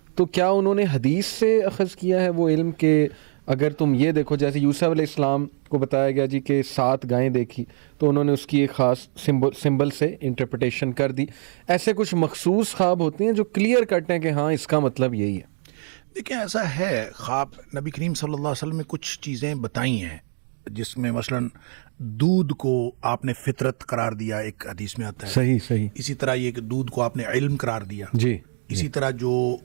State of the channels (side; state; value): left; silent; digital silence